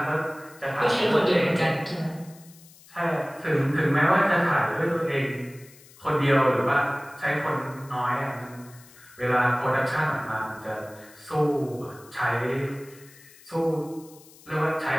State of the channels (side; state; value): left; noise; hiss, 24 dB below the sound